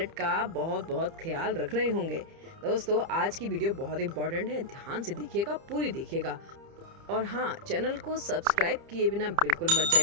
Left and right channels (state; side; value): late; left; 30 ms